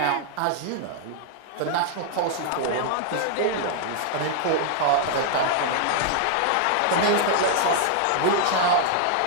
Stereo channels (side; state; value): both; different; correlation -0.01